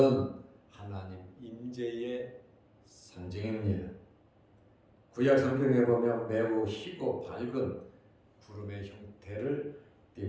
하나님 임재의 상징입니다. 구약 성경에 보면 매우 희고 밝은 구름의 형태를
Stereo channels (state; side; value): identical; both; correlation 1.00